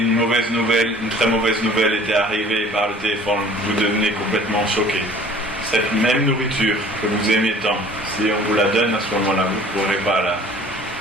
très mauvaise nouvelle était arrivée par le téléphone, vous devenez complètement choqué. Cette même nourriture que vous aimez tant, si on vous la donne à ce moment-là, vous ne pourrez pas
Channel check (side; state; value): both; normal; correlation 0.50